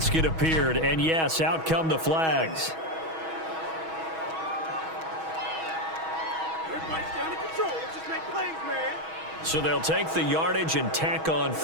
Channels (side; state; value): left; late; 6.2 ms